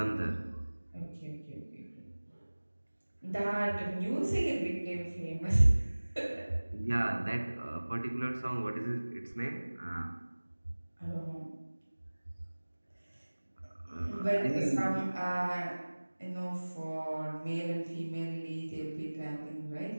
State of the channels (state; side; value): inverted; both; correlation -1.00